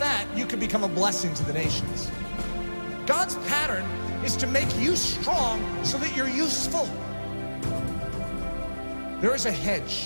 you can become a blessing to the nations. God's pattern is to make you strong so that you're useful. There is a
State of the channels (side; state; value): both; inverted; correlation -1.00